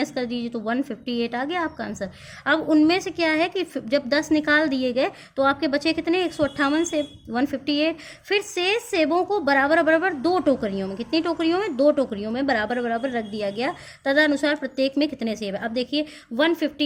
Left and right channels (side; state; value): both; identical; correlation 1.00